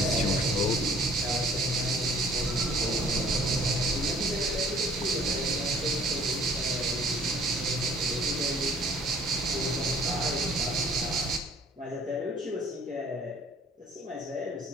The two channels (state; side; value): normal; both; correlation 0.55